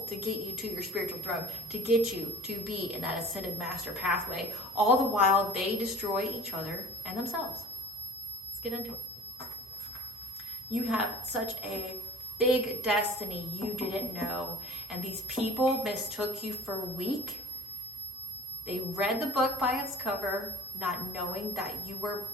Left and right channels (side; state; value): both; normal; correlation 0.47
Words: to get you to your spiritual throne, to get you to be in that ascended master pathway, all the while they destroy each other and themselves. Let's get into it. You have such a big destiny you didn't know, and these people mistook you for weak. They read the book by its cover, not knowing that you were